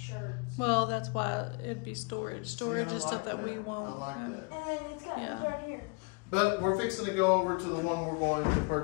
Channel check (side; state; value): right; quieter; 31.5 dB